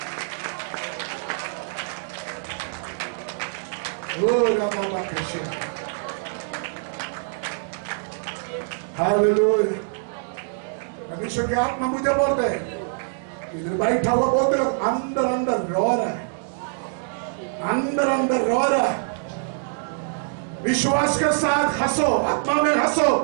हालेलुया। परमेश्वर की आत्मा मुझे बोलते हैं, इधर बैठा हुआ बोलते लोग अंदर अंदर रो रहा है, अंदर अंदर रो रहा है। विश्वास के साथ हंसो, आत्मा में हंसो,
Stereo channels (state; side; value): silent; left; digital silence